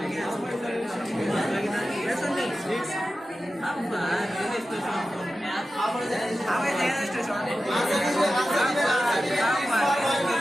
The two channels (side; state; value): both; normal; correlation 0.93